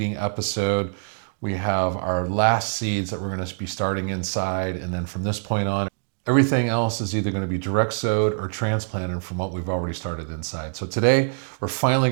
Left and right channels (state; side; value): silent; left; digital silence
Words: episode. We have our last seeds that we're going to be starting inside, and then from this point on, everything else is either going to be direct sowed or transplanted from what we've already started inside. So today we're finally